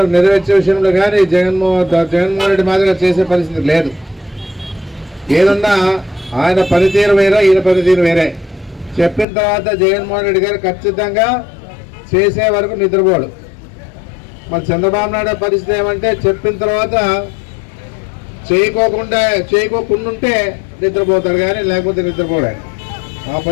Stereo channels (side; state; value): right; drops out; at 9.2 s